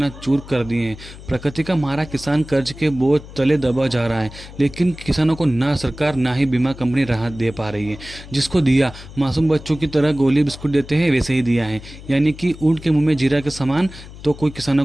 कर दिए हैं। प्रकृति का मारा किसान कर्ज के बोझ तले दबा जा रहा है, लेकिन किसानों को ना सरकार ना ही बीमा कंपनी राहत दे पा रही है। जिसको दिया मासूम बच्चों की तरह गोली बिस्कुट देते हैं वैसे ही दिया है, यानी कि ऊँट के मुँह में जीरा के समान तो कोई किसानों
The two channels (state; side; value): noise; left; hum, 16 dB below the sound